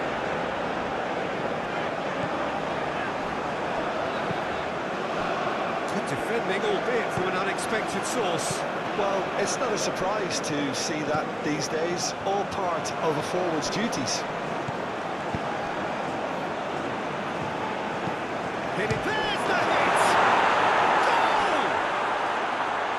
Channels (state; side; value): identical; both; correlation 1.00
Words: Good defending, albeit from an unexpected source. Well, it's not a surprise to see that these days, all part of a forward's duties. There's the hit! Goal!